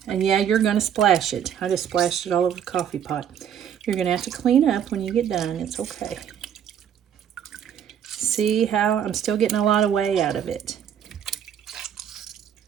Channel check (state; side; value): quieter; left; 9.0 dB